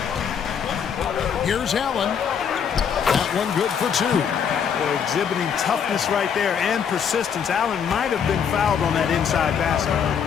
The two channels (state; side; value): quieter; right; 7.4 dB